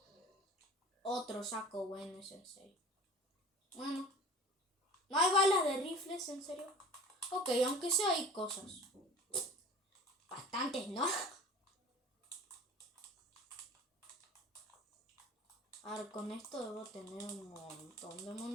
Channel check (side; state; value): both; normal; correlation 0.41